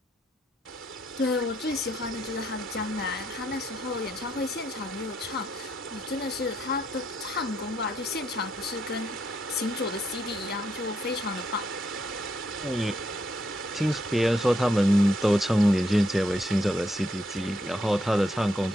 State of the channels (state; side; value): normal; both; correlation 0.76